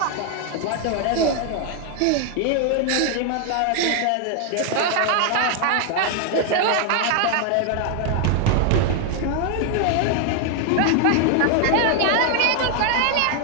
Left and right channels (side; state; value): both; different; correlation 0.00